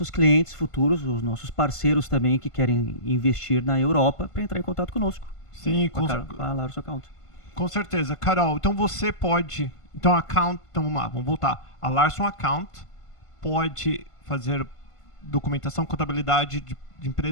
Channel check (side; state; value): right; late; 1.5 ms